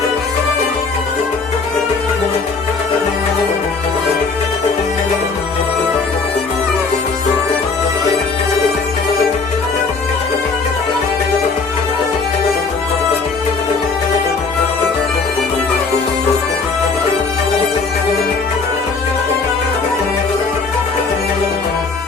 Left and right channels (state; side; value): quieter; right; 4.4 dB